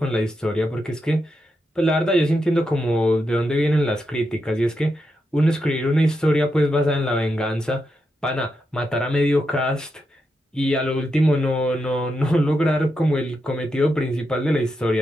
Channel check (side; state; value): both; normal; correlation 0.85